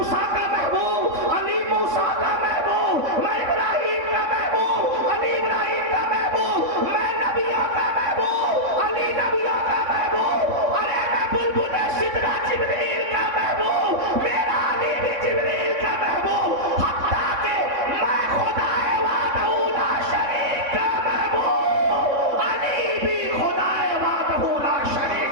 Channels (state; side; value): late; left; 3.6 ms